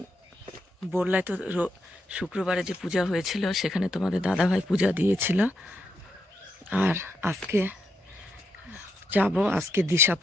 বোরলায় তো শুক্রবারে যে পূজা হয়েছিল সেখানে তোমাদের দাদাভাই পূজা দিয়েছিল। আর আজকে যাব, আজকে দিশা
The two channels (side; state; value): both; normal; correlation 0.81